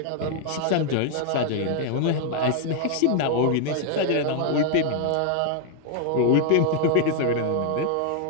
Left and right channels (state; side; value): different; both; correlation 0.00